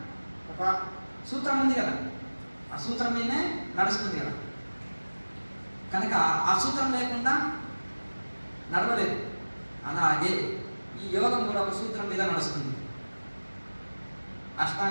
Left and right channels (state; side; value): inverted; both; correlation -1.00